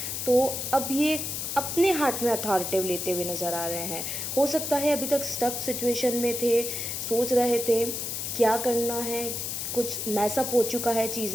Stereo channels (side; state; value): left; noise; hiss, 4 dB below the sound